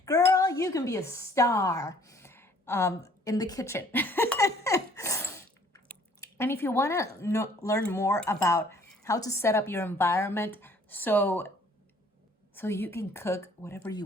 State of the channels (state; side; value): normal; both; correlation 0.58